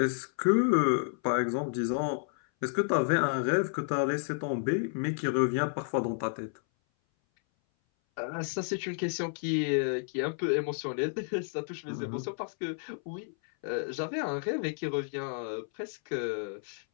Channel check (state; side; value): silent; right; 57 dB below the other